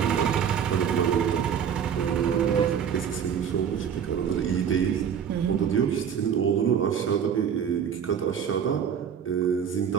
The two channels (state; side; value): quieter; left; 8.0 dB